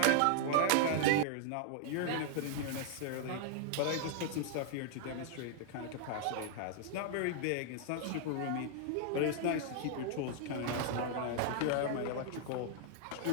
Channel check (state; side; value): different; both; correlation 0.00